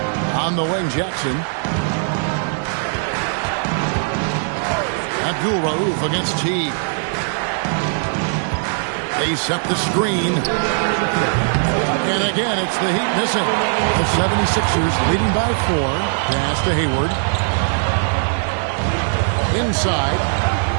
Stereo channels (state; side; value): silent; left; digital silence